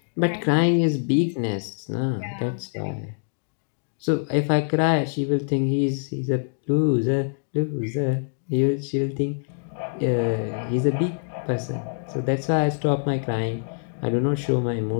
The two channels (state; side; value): silent; right; digital silence